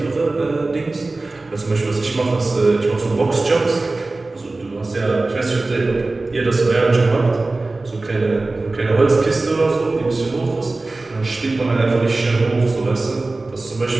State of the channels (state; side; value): quieter; left; 3.2 dB